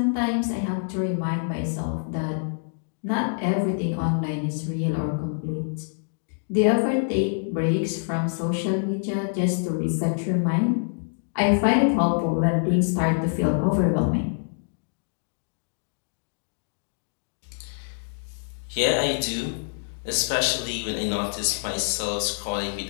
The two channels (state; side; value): silent; right; digital silence